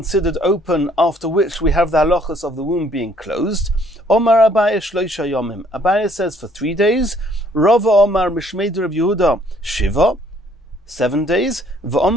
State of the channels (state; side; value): normal; both; correlation 0.63